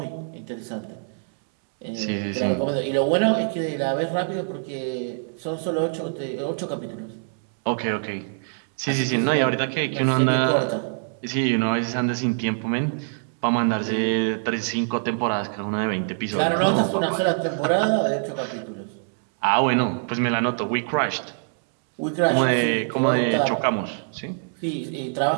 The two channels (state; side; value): silent; left; 62 dB below the other